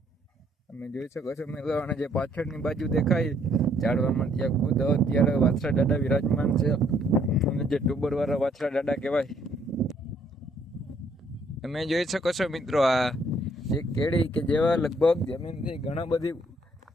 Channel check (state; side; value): normal; both; correlation 0.66